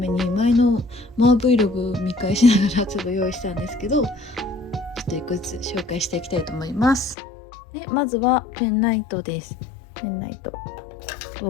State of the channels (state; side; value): drops out; right; at 7.2 s